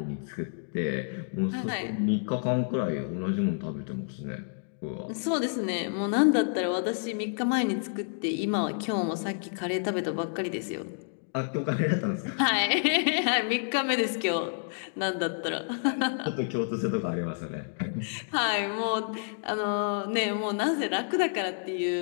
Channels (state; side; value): silent; right; digital silence